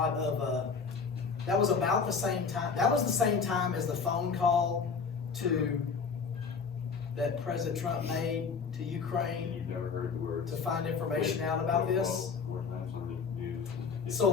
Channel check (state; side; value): quieter; right; 5.4 dB